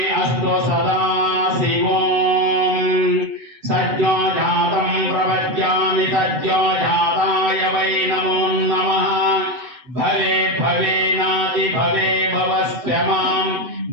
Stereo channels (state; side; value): late; left; 8.0 ms